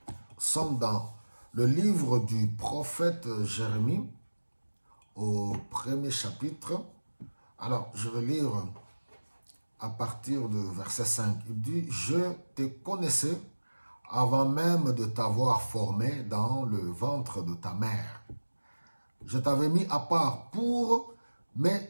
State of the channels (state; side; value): inverted; both; correlation -1.00